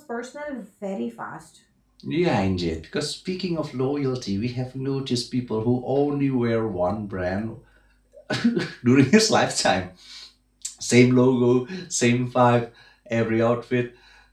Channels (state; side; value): identical; both; correlation 1.00